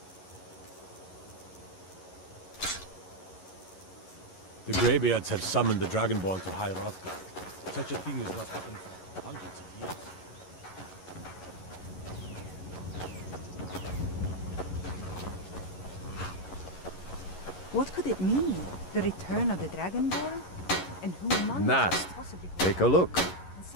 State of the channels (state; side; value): late; right; 11 ms